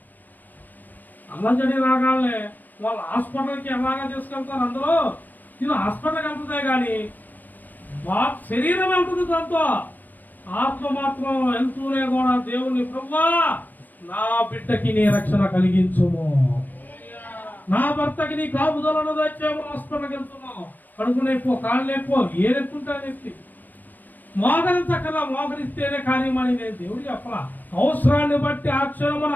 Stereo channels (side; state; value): right; late; 0.088 ms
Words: అలజడి రాగానే వాళ్ళు హాస్పిటల్కి ఎలాగా తీసుకెళ్తారు, అందులో నేను హాస్పిటల్కి వెళ్తుందే కానీ శరీరం వెళ్తుంది, దాంతో ఆత్మ మాత్రం వెళ్తూనే కూడా దేవుని ప్రభువా నా బిడ్డకి నీ రక్షణ కలిగించుము, నా భర్తకి నీ కాపుదలను తెచ్చాము, హాస్పిటల్కి వెళ్తున్నావు, కడుపు నొప్పో కాళ్ళు నొప్పో ఏ నొప్పుంటా నొప్పి మోకరించక్కలా, మోకరిస్తేనే కార్యమని నేను దేవుడు చెప్పలా. అవసరాన్ని బట్టి ఆ క్షణమున